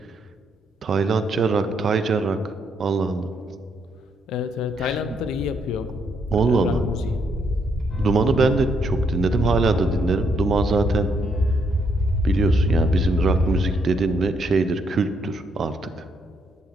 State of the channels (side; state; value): both; normal; correlation 0.74